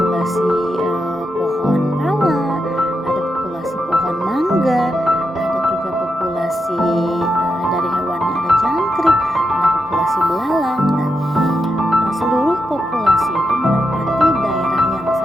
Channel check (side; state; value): both; normal; correlation 0.85